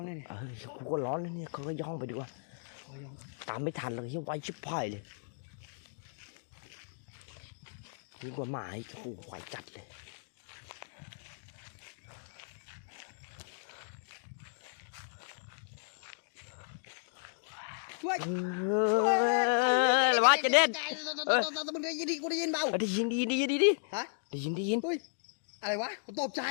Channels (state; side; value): silent; right; digital silence